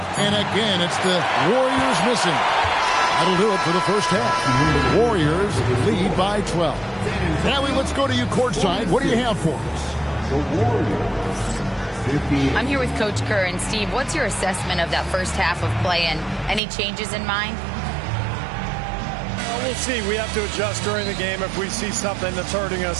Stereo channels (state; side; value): drops out; left; at 16.6 s